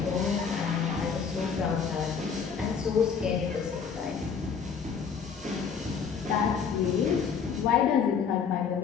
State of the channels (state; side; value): quieter; right; 6.4 dB